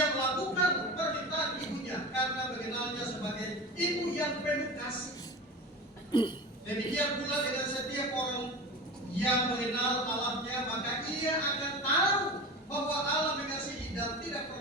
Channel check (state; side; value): normal; both; correlation 0.30